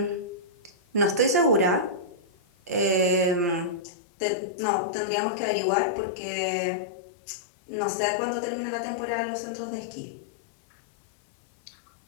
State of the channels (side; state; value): right; drops out; at 3.8 s